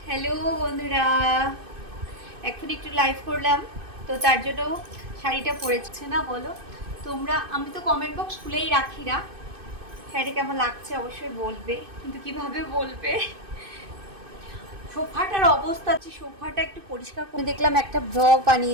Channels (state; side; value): late; left; 2.6 ms